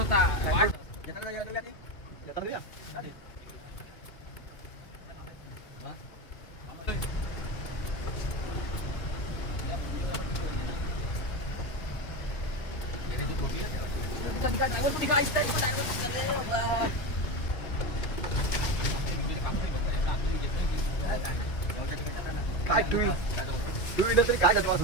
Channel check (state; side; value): late; right; 2.6 ms